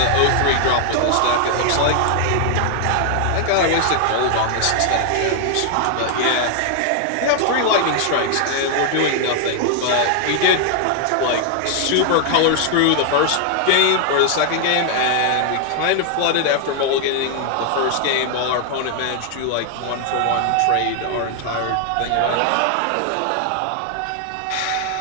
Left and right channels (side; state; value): both; different; correlation 0.00